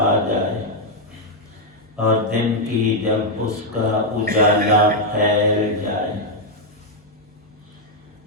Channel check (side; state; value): both; normal; correlation 0.00